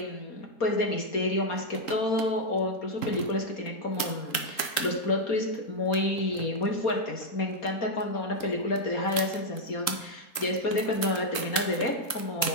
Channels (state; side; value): late; right; 3.7 ms